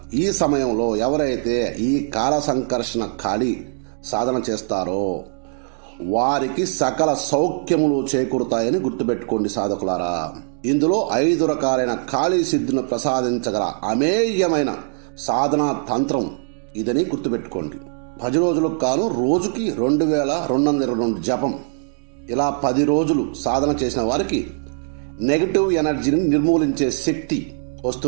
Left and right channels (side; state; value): left; silent; digital silence